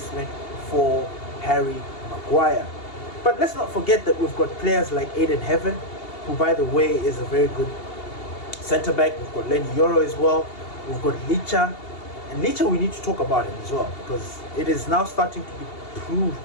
for Harry Maguire. But let's not forget that we've got players like Aiden Heaven, who, by the way, is a very good centre-back. We've got Lenny Yoro as well. We've got Licha. And Licha, we need to talk about him as well, because it is now starting to be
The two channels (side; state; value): right; late; 2.8 ms